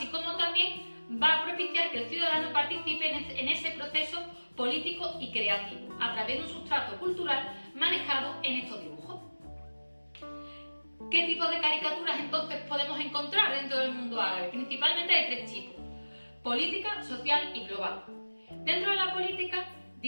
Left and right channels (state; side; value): inverted; both; correlation -1.00